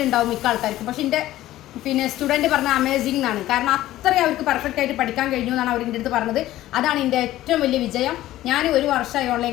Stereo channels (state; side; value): quieter; right; 14.9 dB